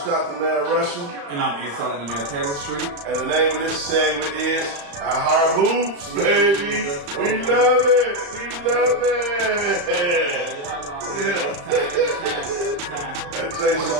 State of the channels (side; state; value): left; late; 35 ms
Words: the man wrestling. And I'm A-Selling the man Taylor Street. And the name of this segment is Our Heart Hoops, baby. We love it. We love it. Yeah. That takes